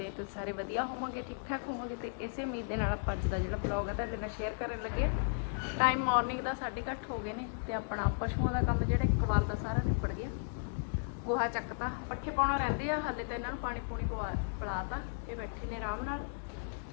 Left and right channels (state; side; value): silent; right; digital silence